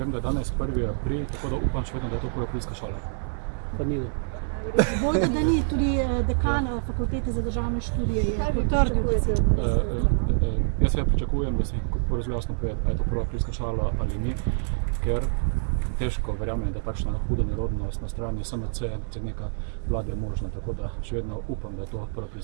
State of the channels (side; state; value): left; silent; digital silence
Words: da je danes 1. april, tako da upam še vedno, da je to Koropilska šola. Pa ni. Bojda, da ni, tudi dekan fakultete za državne študije je potrdil, da se Jaz seveda pričakujem, da se zelo jasno pove, ali je to Koropilska šola ali ni, ker težko verjamem, da takšna huda nerodnost na strani SMC, predsednika vlade je možna, tako da še vedno upam, da je to